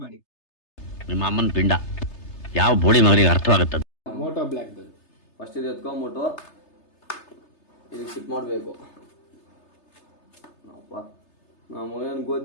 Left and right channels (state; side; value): late; right; 3.3 ms